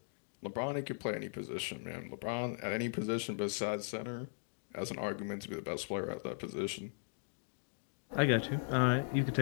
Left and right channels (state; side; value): silent; right; digital silence